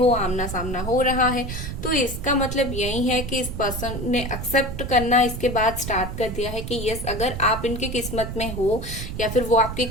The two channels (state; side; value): noise; right; rumble, 6 dB below the sound